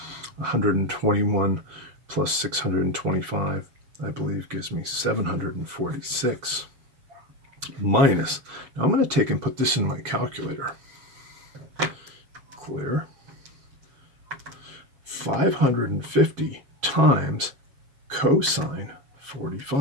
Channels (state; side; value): late; left; 7.4 ms